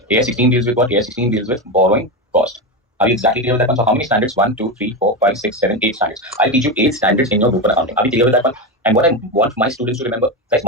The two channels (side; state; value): both; normal; correlation 0.15